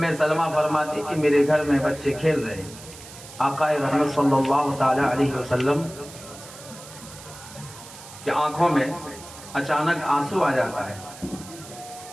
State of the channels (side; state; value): right; noise; hiss, 17 dB below the sound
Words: سلمہ فرماتی کہ میرے گھر میں بچے کھیل رہے ہیں، آقا رحمت صلی اللہ تعالی علیہ وسلم کی آنکھوں میں اچانک آنسو آ جاتا ہے،